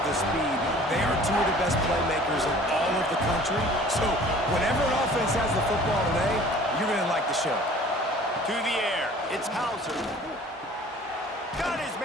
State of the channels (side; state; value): both; normal; correlation 0.49